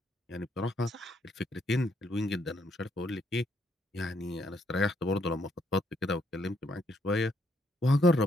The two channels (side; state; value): both; normal; correlation 0.72